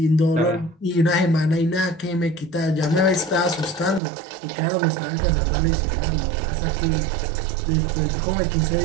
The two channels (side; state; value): left; drops out; at 4.0 s